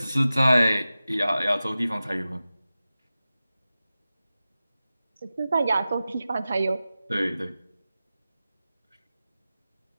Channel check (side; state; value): both; inverted; correlation -0.95